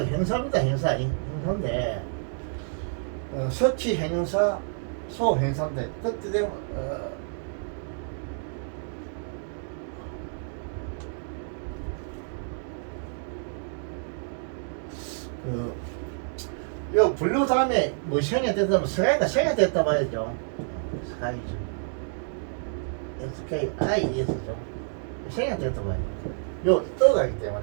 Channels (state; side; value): silent; left; digital silence